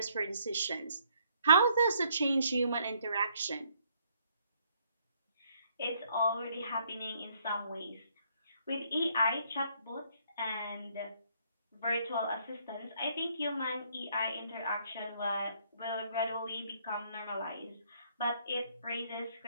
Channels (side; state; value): both; inverted; correlation -0.67